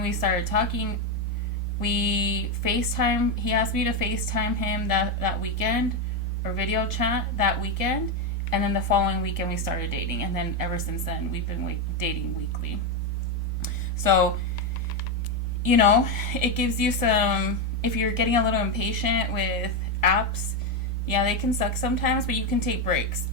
we started talking, we FaceTime. He asked me to FaceTime him that weekend, or video chat that weekend. And then the following weekend we started dating. And then ever since then, we've been dating weekly. So, you know, it gives you some, if you're getting a little impatient with apps, yeah, they can suck sometimes, but you can take breaks,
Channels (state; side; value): normal; both; correlation 0.07